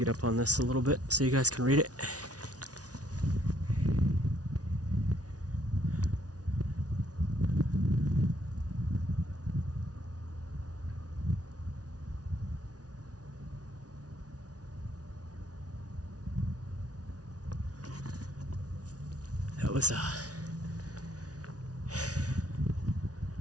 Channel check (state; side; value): late; left; 0.68 ms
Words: up on this a little bit so you guys can read it. That was